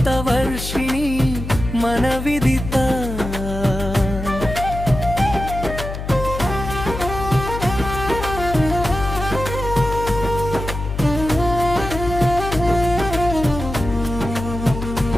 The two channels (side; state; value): left; noise; hum, 7 dB below the sound